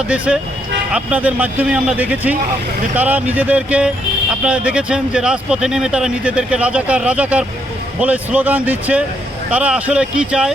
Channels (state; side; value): normal; both; correlation 0.74